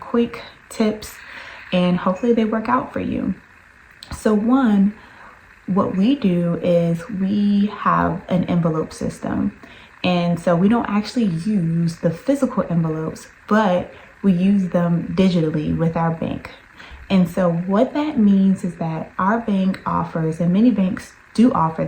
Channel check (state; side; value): identical; both; correlation 1.00